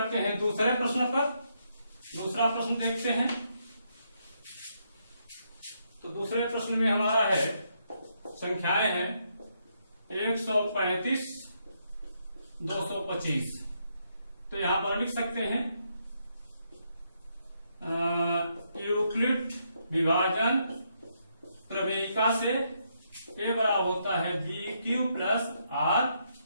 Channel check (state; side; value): inverted; both; correlation -0.77